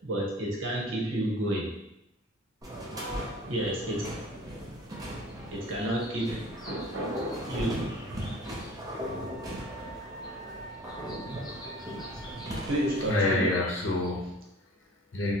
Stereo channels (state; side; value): normal; both; correlation 0.46